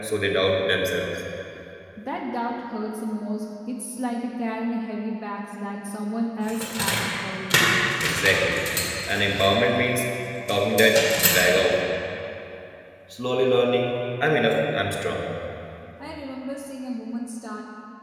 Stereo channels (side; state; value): both; identical; correlation 1.00